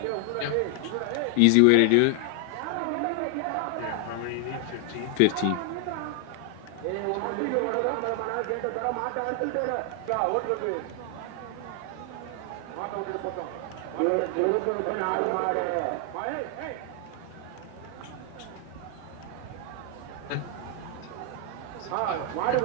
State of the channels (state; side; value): different; both; correlation 0.00